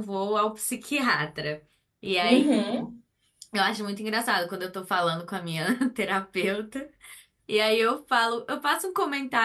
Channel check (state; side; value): identical; both; correlation 1.00